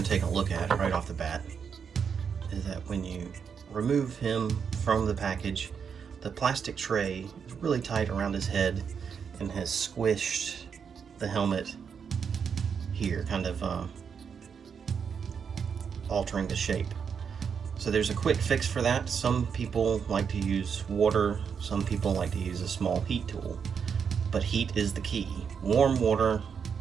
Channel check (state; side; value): quieter; left; 6.7 dB